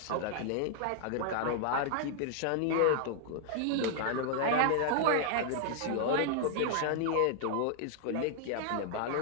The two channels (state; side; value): different; both; correlation 0.00